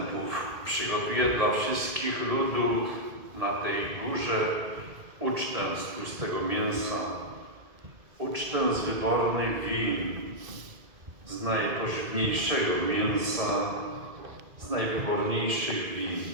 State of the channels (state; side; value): late; left; 2.2 ms